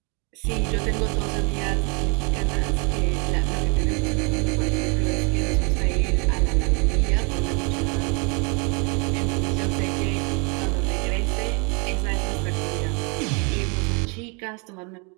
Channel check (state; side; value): quieter; left; 33.1 dB